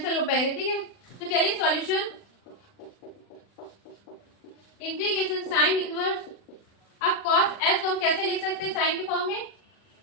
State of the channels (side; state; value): right; late; 40 ms